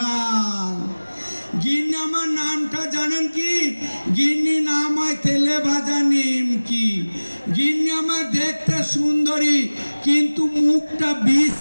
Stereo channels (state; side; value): inverted; both; correlation -1.00